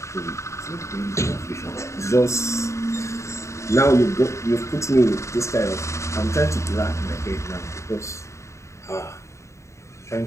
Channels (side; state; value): right; late; 0.14 ms